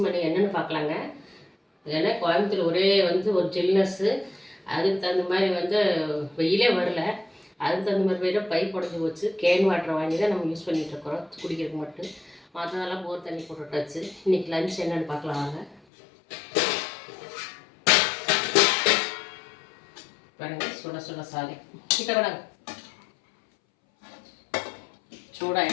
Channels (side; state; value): right; drops out; at 15.8 s